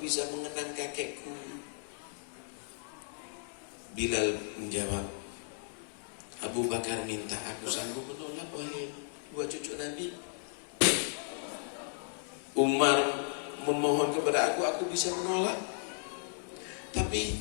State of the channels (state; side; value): silent; right; 55 dB below the other